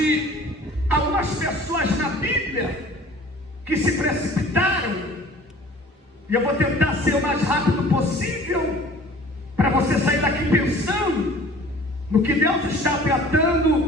algumas pessoas na Bíblia que se precipitaram, e eu vou tentar ser o mais rápido possível para você sair daqui pensando no que Deus está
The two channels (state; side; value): normal; both; correlation 0.47